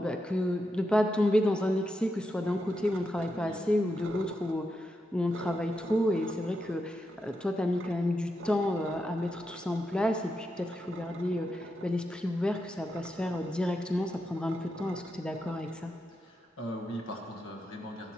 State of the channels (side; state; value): both; normal; correlation 0.85